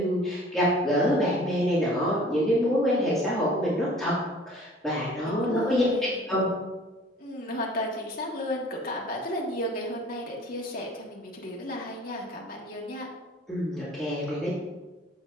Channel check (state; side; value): normal; both; correlation 0.49